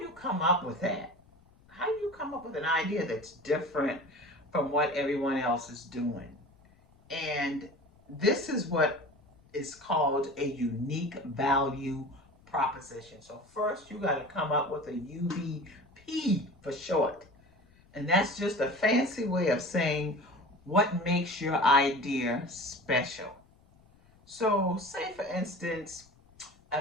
you come up with that? How do you come up with an idea that's different from what everyone else is doing? And this is what is called a unique value proposition. So first you got to come up with a UVP for short. And that's just a fancy way of saying what makes your idea special. So, say for instance,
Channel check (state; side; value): noise; left; rumble, 29 dB below the sound